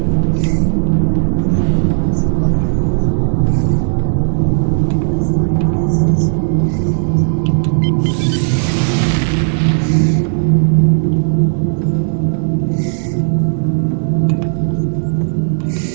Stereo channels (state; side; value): silent; left; digital silence